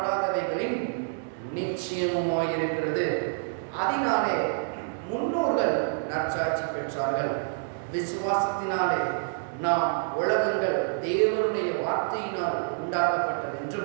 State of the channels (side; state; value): left; silent; 60 dB below the other